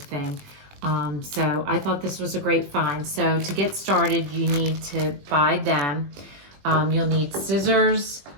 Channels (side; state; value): left; late; 21 ms